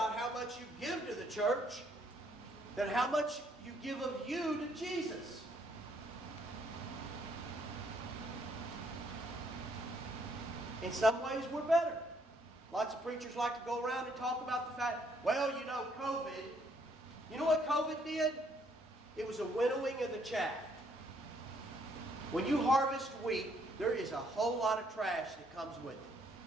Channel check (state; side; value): normal; both; correlation 0.69